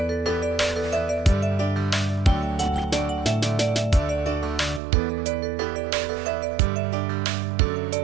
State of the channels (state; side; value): drops out; left; at 4.8 s